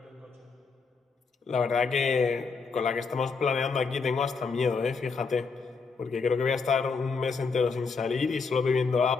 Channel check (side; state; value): right; quieter; 4.8 dB